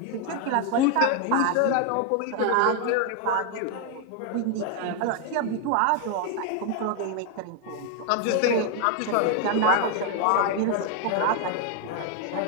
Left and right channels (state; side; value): different; both; correlation 0.01